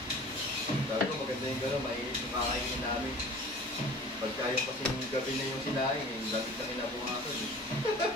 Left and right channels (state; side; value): normal; both; correlation 0.43